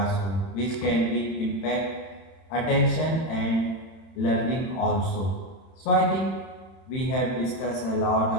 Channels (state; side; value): late; right; 31 ms